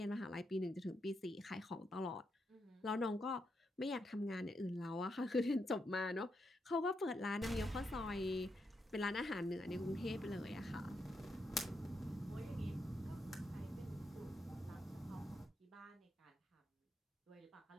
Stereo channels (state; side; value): normal; both; correlation 0.82